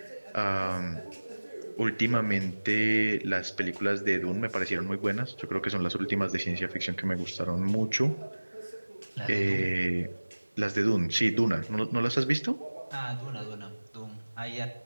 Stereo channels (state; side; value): inverted; both; correlation -1.00